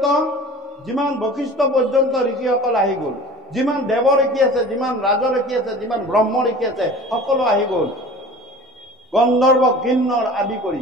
যিমান বশিষ্ঠ পৰ্যন্ত ঋষিসকল আহি গ'ল, যিমান দেৱ ঋষি আছে, যিমান ৰাজ ঋষি আছে, যিমান ব্ৰহ্ম ঋষি আছে, সকলো আহি গ'ল, গন্ধৰ্ব কিন্নৰ আদি কৰি।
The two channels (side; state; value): both; normal; correlation 0.41